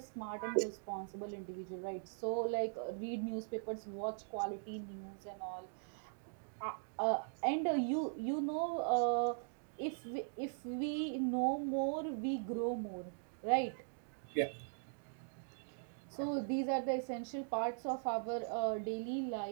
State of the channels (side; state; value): left; silent; digital silence